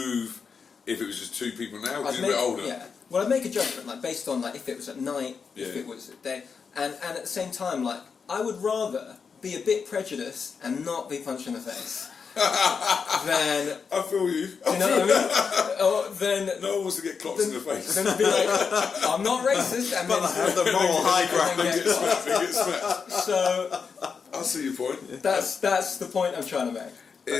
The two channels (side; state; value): right; quieter; 5.8 dB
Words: if it was just two people now? Because you're a bit older. Yeah. Well, I'd make a judgment, based on if it was at night, if Yeah. it was at day, and at the same time, I would rather be a bit prejudiced and not be punched in the face than. I feel you. You know what I mean? Or then. No one wants to get clocked in the face. Then I'd be like, I'm not racist, and But I have the moral high ground. then They get get smacked. So I see your point. that's the point I'm trying to make.